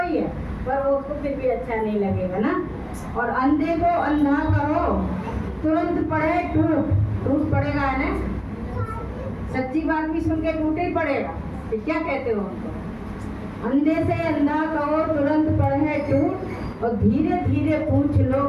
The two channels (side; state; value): both; identical; correlation 1.00